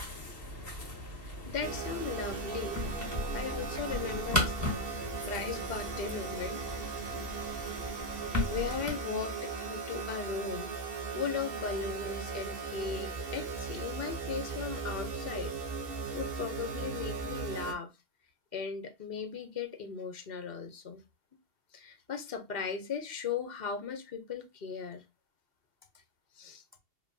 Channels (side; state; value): left; late; 2.7 ms